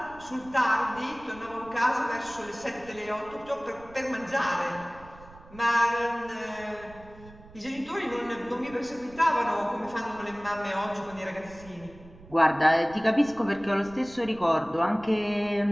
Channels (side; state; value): right; noise; rumble, 21 dB below the sound